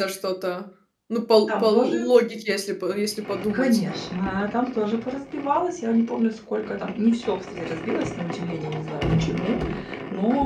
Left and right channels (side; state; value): both; identical; correlation 1.00